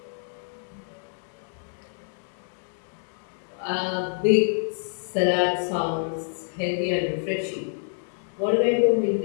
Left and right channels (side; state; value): right; silent; digital silence